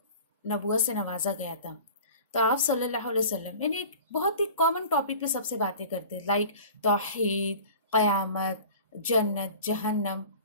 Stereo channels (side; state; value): both; inverted; correlation -0.41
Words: नबुवत से नवाजा गया था, तो आप सल्लल्लाहु अलैहि वसल्लम यानी एक बहुत ही कॉमन टॉपिक पे सबसे बातें करते, लाइक तौहीद, क़यामत, जन्नत, जहन्नम,